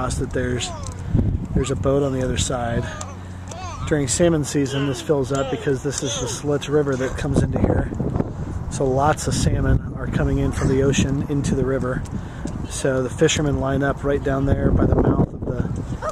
that there's a boat on the other side. During salmon season, this fills up because this is the Slits River that comes into here. So lots of salmon are coming in from the ocean into the river. So the fishermen line up right down there by the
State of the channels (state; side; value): identical; both; correlation 1.00